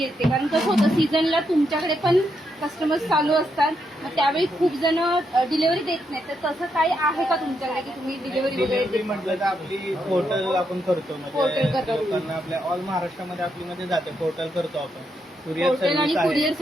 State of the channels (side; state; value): both; normal; correlation 0.80